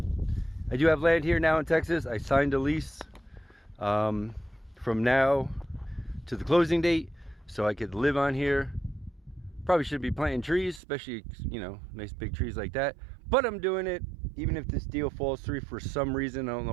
I do have land here now in Texas. I signed a lease from now to the closing date, so I could live on here. Probably should be planting trees, especially, you know, nice big trees like that. But I'm doing it, even if this deal falls through for some reason. I don't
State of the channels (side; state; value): left; drops out; at 10.8 s